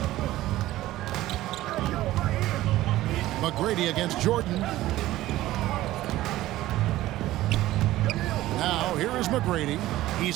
McGrady against Jordan. Now, here is McGrady.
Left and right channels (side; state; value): left; quieter; 15.8 dB